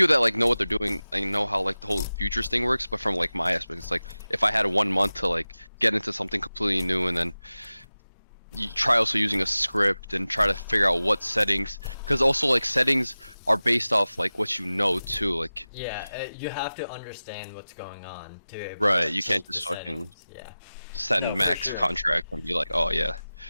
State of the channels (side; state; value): both; inverted; correlation -0.96